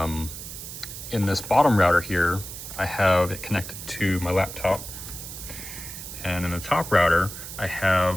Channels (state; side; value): noise; right; hiss, 10 dB below the sound